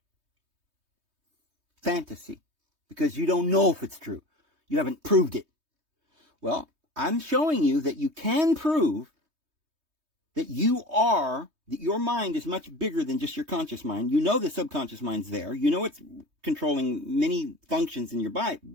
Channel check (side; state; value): left; late; 3.2 ms